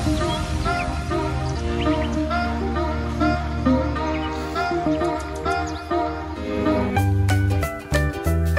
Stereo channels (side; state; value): both; identical; correlation 1.00